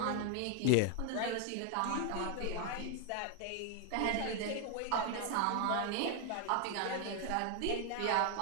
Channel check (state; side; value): different; both; correlation 0.00